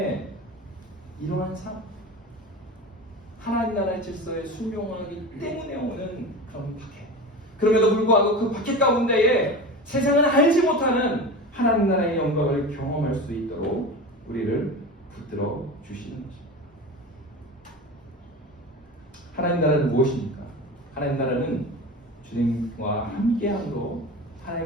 이러한 삶, 하나님 나라의 질서에 순종하기 때문에 오는 그런 박해. 그럼에도 불구하고 그 박해 가운데에 세상은 알지 못하는 하나님 나라의 영광을 경험할 수 있도록 우리를 붙들어 주시는 것입니다. 하나님 나라는 무엇입니까? 하나님 나라는 주님과 함께함으로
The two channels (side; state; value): both; normal; correlation 0.30